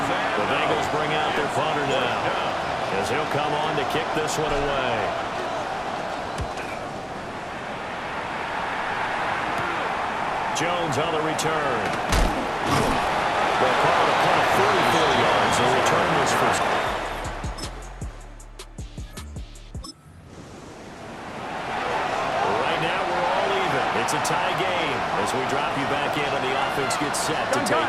The Bengals bring out their punter now, as he'll come on to kick this one away. Jones on the return. They'll call it a punt of 44 yards. The return was first. Right now, we're all even. It's a tie game as we drop you back in and the offense gets set to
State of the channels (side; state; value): both; identical; correlation 1.00